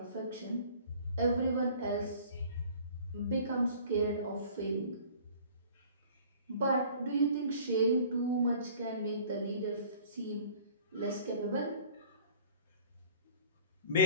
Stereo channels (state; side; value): inverted; both; correlation -0.50